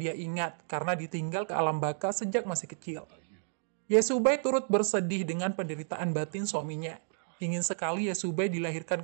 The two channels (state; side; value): silent; left; digital silence